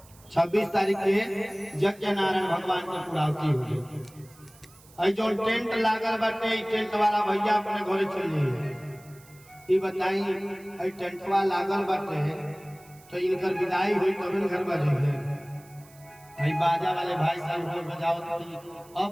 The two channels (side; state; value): right; noise; hiss, 25 dB below the sound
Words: 26 तारीख के यज्ञ नारायण भगवान की पूर्णाहुति हो जाए। जो टेंट लागल बाटे, टेंट वाला भैया अपने घरे चल जाइए। ये बताई टेंटवा लागल बाटे तो इनकर विदाई हुई तब घर बजे। बाजा वाले भाई साहब को बजाओ तो